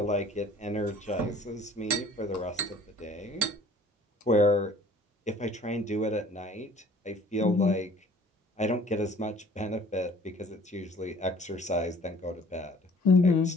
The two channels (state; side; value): normal; both; correlation 0.52